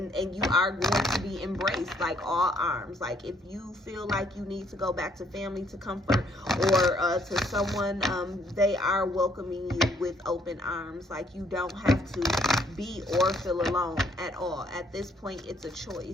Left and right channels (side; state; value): both; normal; correlation 0.67